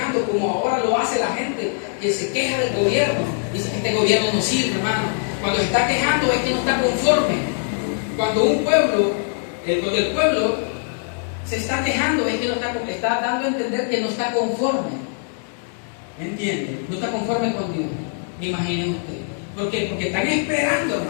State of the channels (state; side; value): silent; right; digital silence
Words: como ahora lo hace la gente que se queja del gobierno? Dice que este gobierno no sirve, hermano. Cuando se está quejando es que no está conforme. Cuando el pueblo se está quejando es que no está dando a entender que no está conforme. ¿Me entiende? No está conforme con Dios. Imaginen usted. ¿Por qué? Porque están esperando,